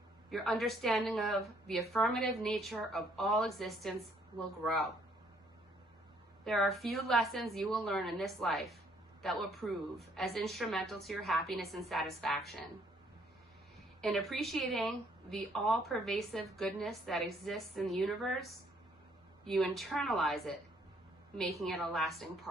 your understanding of the affirmative nature of all existence will grow. There are few lessons you will learn in this life that will prove as instrumental to your happiness and satisfaction. In appreciating the all-pervasive goodness that exists in the universe, you internalize it, making it a lasting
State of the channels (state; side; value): normal; both; correlation 0.65